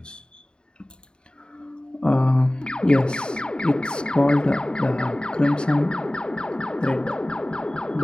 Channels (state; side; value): late; right; 0.049 ms